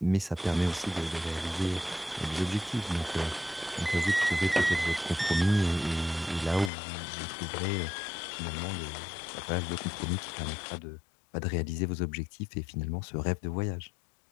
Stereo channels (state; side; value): drops out; right; at 6.7 s